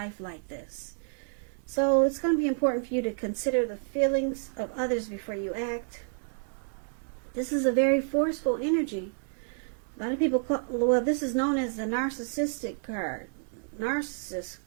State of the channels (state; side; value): silent; left; digital silence